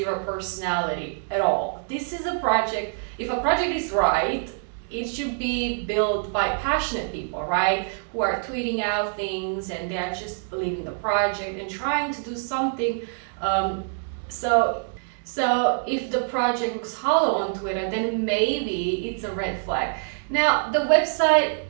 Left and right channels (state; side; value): silent; left; 62 dB below the other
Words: personality at all. This is a project, if a project is right, it should be built by passionate people, right? Who are tweeting out things and they are just believing the project and trying to do something. So if the project looks hollow on Twitter, then maybe it's a red flag. Now, the website